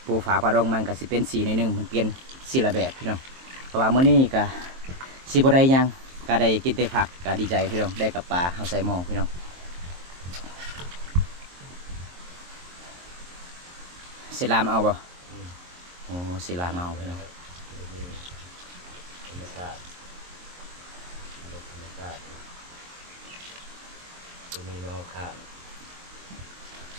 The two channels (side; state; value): left; late; 23 ms